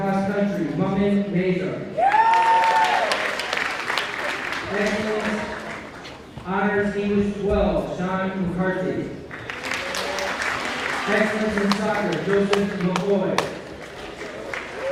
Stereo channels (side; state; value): both; identical; correlation 1.00